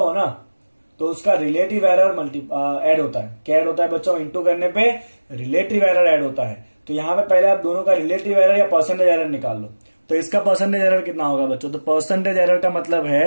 ना, तो उसका रिलेटिव एरर ऐड होता है। क्या ऐड होता है बच्चों? इंटू करने पे रिलेटिव एरर ऐड होता है। तो यहाँ पे पहले आप दोनों का रिलेटिव एरर या परसेंटेज एरर निकाल लो। तो इसका परसेंटेज एरर कितना होगा बच्चों? तो परसेंटेज एरर का मतलब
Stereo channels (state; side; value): inverted; both; correlation -1.00